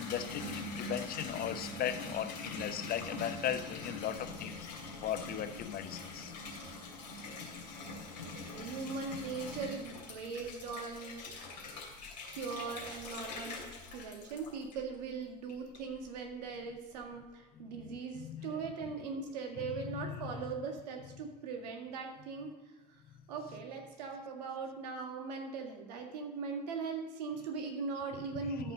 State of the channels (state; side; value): normal; both; correlation 0.13